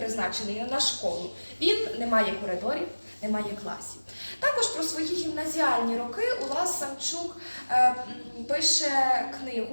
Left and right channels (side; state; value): both; inverted; correlation -1.00